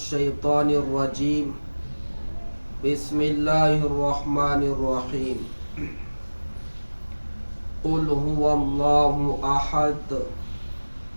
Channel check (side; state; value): both; inverted; correlation -1.00